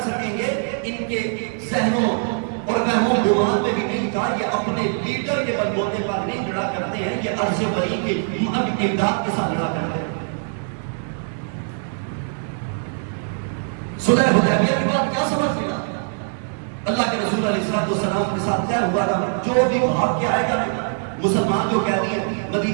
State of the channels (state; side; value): silent; left; 64 dB below the other